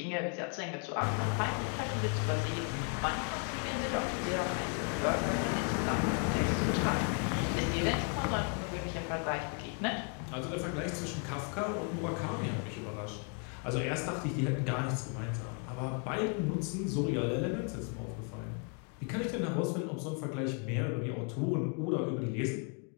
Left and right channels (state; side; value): quieter; right; 39.7 dB